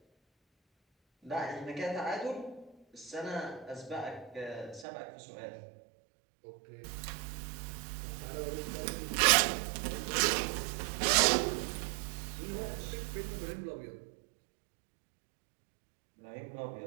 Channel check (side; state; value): left; drops out; at 4.9 s